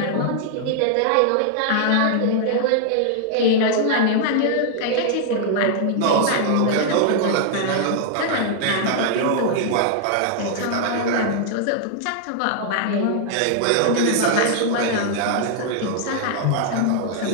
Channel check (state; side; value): different; both; correlation 0.00